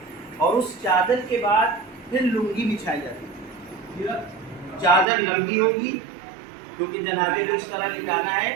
اور اس چادر کے بعد پھر لنگی بچھائی جاتی ہے. چادر لمبی ہوگی کیونکہ جنازے کو اس طرح لٹانا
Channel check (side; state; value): left; drops out; at 5.1 s